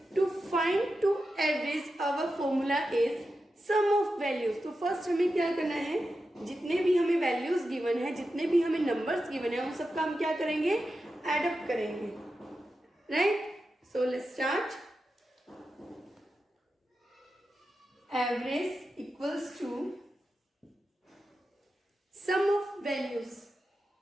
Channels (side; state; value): both; normal; correlation 0.90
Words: to find to average our formula is sum of values. तो first हमें क्या करना है? जितने भी हमें values given है, जितने भी हमें numbers given है, उन सबका हम क्या करेंगे? Add up करेंगे. Right? So let's start. Average equals to sum of values.